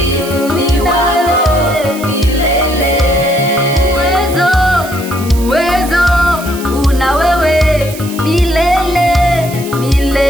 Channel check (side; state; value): right; noise; hiss, 14 dB below the sound